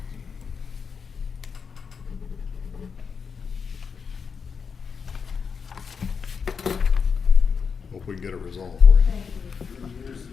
Hope we can get it resolved for you. 3 years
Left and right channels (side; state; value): right; quieter; 5.9 dB